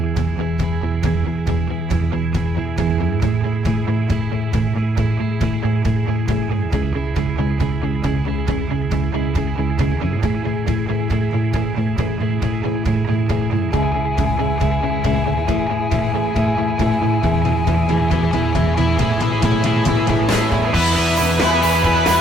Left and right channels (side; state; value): both; normal; correlation 0.73